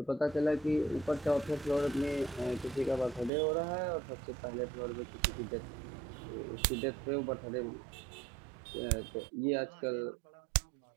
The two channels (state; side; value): drops out; left; at 3.3 s